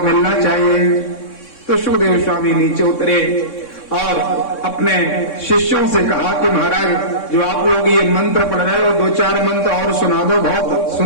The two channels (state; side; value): late; right; 3.6 ms